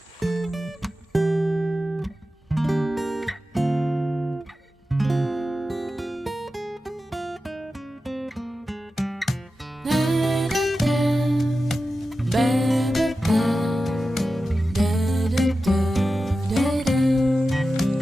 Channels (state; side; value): normal; both; correlation 0.93